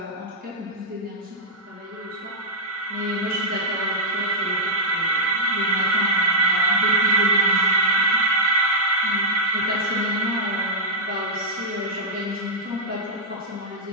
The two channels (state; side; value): normal; both; correlation -0.07